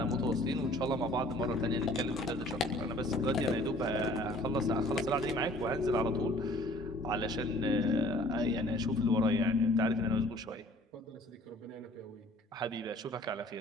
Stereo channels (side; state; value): both; normal; correlation 0.54